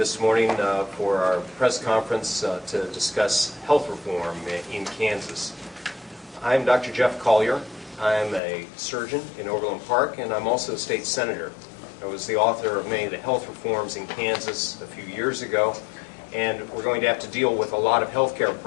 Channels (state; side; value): drops out; right; at 8.4 s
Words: morning for our press conference to discuss health reform in Kansas. I'm Dr. Jeff Colyer. I'm a surgeon in Overland Park, and I'm also a state senator. I was the author of many of the health reforms in Kansas a few years ago, and we're going to have to deal with a lot of health care